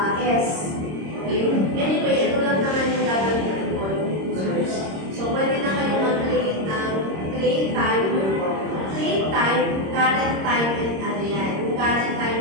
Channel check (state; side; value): late; left; 26 ms